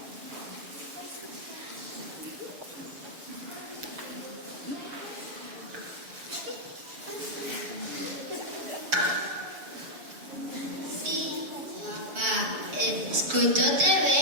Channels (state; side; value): late; left; 6.9 ms